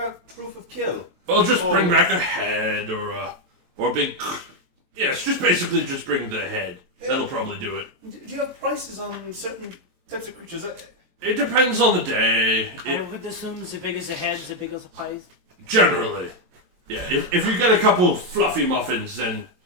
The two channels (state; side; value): late; left; 23 ms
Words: proof of kill? Well, just bring back a head or a big. Yes, just bring the head. That'll probably do it. Do you have prices on certain types of creatures? It depends on the day. I would assume as big as a head, as big as a pies. Generally, yeah. If you get a couple fluffy muffins, then